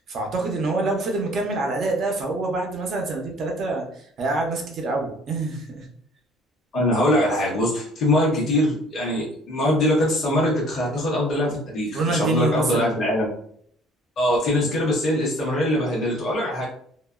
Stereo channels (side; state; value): both; normal; correlation 0.54